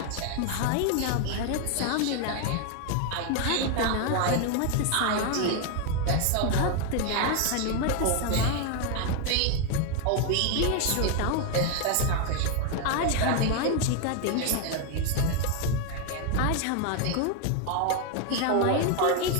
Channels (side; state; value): both; different; correlation 0.01